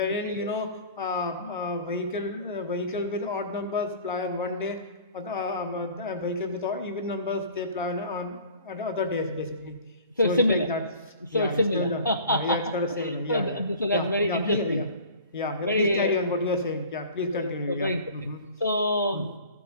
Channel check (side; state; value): both; inverted; correlation -0.44